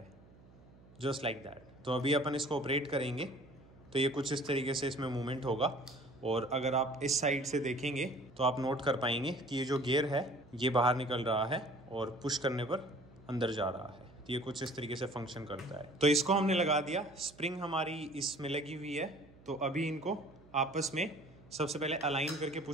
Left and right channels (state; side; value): noise; right; hum, 24 dB below the sound